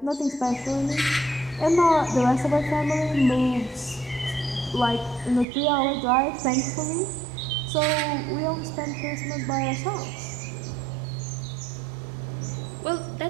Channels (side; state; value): left; drops out; at 5.5 s